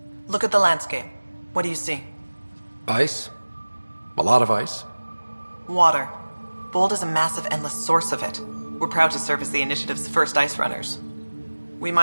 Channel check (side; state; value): both; inverted; correlation -1.00